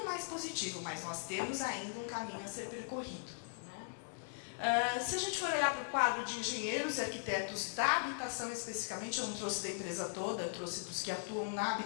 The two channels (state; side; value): silent; right; digital silence